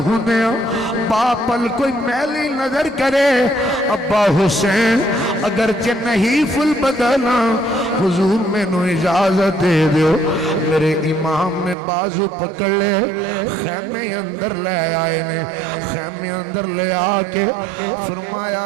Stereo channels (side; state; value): left; drops out; at 11.8 s